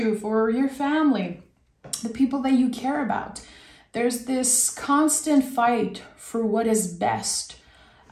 for your family, the people that you care about. There's this constant fight for what is best,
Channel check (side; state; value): both; identical; correlation 1.00